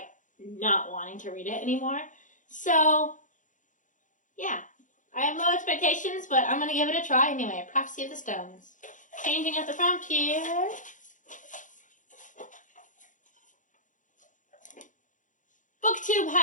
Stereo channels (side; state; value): right; late; 0.37 ms